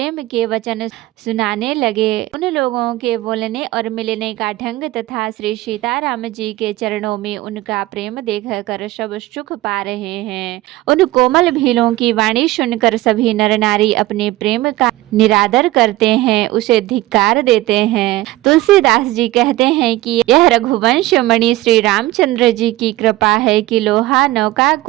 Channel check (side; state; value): left; quieter; 17.4 dB